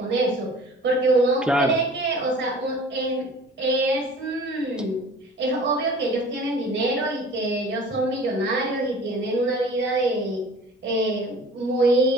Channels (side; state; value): both; normal; correlation 0.45